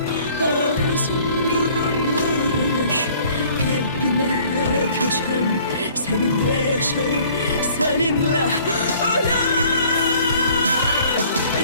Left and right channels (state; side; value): inverted; both; correlation -0.55